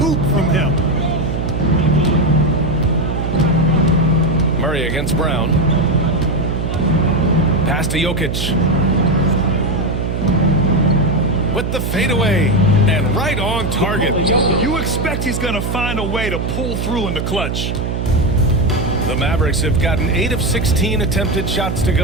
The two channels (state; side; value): noise; right; hum, 2 dB below the sound